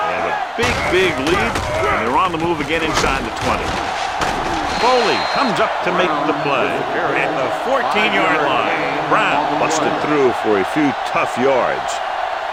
They have a big lead, and they're on the move again inside the 20. Foley comes up to make the play at the 14-yard line. Brown busted through for a few tough yards.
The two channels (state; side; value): identical; both; correlation 1.00